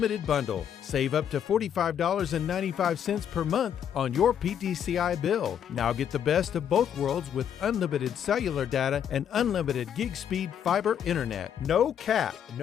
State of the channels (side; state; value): right; quieter; 8.9 dB